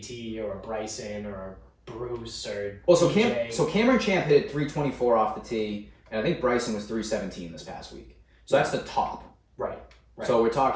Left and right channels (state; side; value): identical; both; correlation 1.00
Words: or a Bryson or a Bruce or Cameron Champ hit it 324 off the tee, and I think Bryson was 317 this past week. So that's the top. Right. So we're